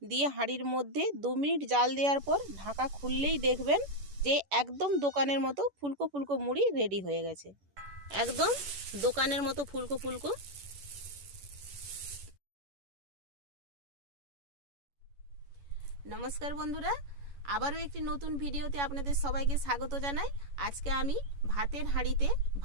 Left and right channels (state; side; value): late; left; 11 ms